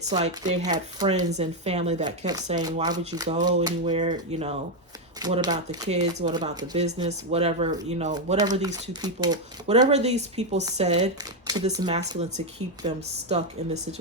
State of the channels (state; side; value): normal; both; correlation 0.04